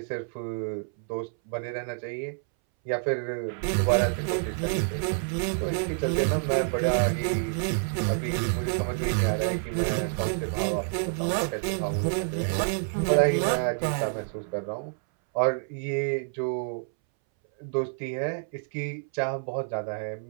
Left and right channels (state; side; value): silent; left; 59 dB below the other